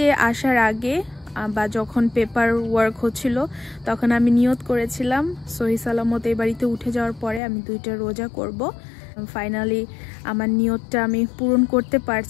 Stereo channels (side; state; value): right; drops out; at 7.4 s